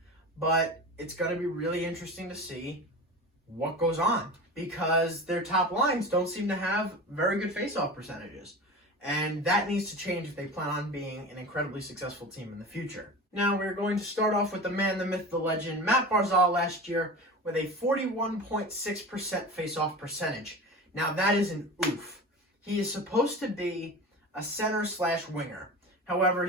but it's going to be really interesting to see what goes on because their top lines don't seem to have very good face-off percentages. And that needs to change if they plan on being an incredibly successful team in the future. Now, we're going to start off with the man, the myth, the legend, Matt Barzal last year with a 41.6% face-off percentage. Now, that is an oof. He is supposed to be a center/winger. However,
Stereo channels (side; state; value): both; normal; correlation 0.31